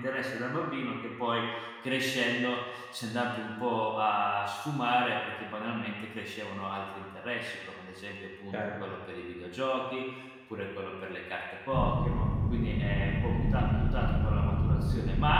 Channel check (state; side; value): identical; both; correlation 1.00